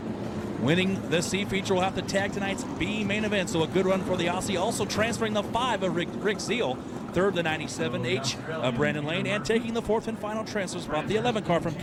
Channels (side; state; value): both; identical; correlation 1.00